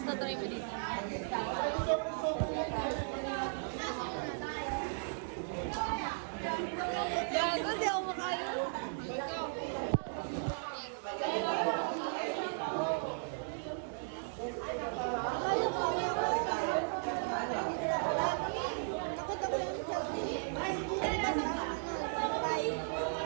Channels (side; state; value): left; silent; digital silence